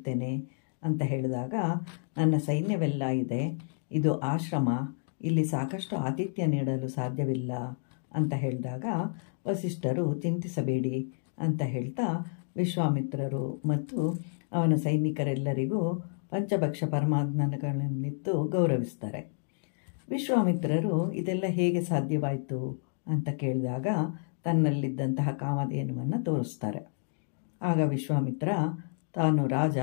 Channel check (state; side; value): silent; right; digital silence